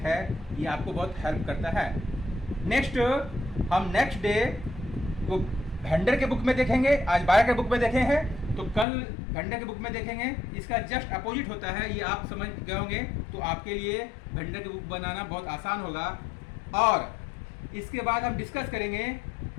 है, ये आपको बहुत हेल्प करता है। नेक्स्ट हम नेक्स्ट डे को वेंडर के बुक में देखेंगे। आज बायर के बुक में देखे हैं तो कल वेंडर के बुक में देखेंगे। इसका जस्ट अपोजिट होता है, ये आप समझ गए होंगे तो आपके लिए वेंडर की बुक बनाना बहुत आसान होगा। और इसके बाद हम डिस्कस करेंगे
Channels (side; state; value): right; drops out; at 8.8 s